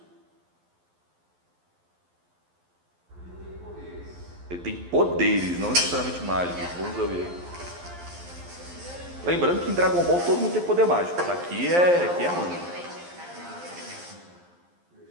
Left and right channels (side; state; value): left; late; 11 ms